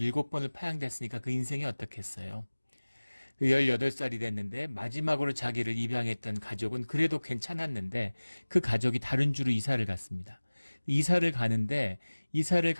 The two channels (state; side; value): inverted; both; correlation -1.00